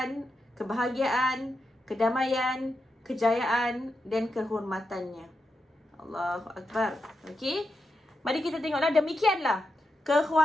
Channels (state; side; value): normal; both; correlation 0.87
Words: kebahagiaan, kedamaian, kejayaan dan kehormatannya. Allahu Akbar. Okey. Mari kita tengoklah, demikianlah